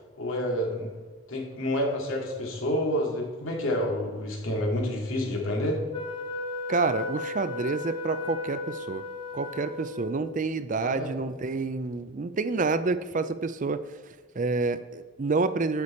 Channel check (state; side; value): normal; both; correlation 0.23